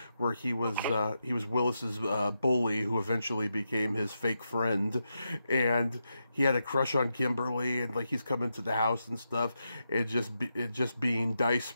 where he was Willis's bully, who eventually became his fake friend, and he had a crush on Kimberly, and like he's coming to the house and stuff, it just being Dice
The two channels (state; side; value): inverted; both; correlation -0.86